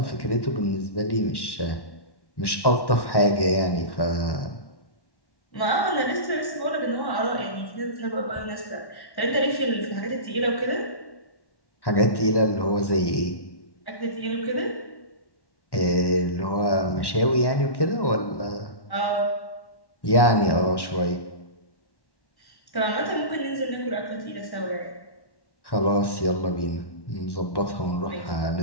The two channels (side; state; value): right; late; 1.1 ms